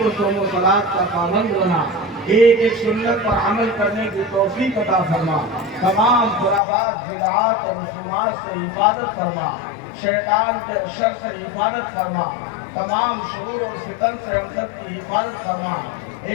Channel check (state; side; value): drops out; right; at 6.6 s